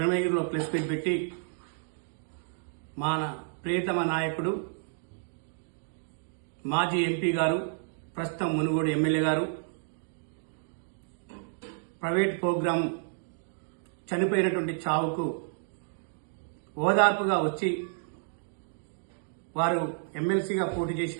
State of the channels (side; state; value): left; silent; digital silence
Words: ప్రెస్ మీట్ పెట్టి మన ప్రియతమ నాయకుడు మాజీ ఎంపీ గారు ప్రస్తుతం మునుగోడు ఎమ్మెల్యే గారు ప్రైవేట్ ప్రోగ్రాం చనిపోయినటువంటి చావుకు ఓదార్పుగా వచ్చి వారు ఎమ్మెల్సీగా పోటీ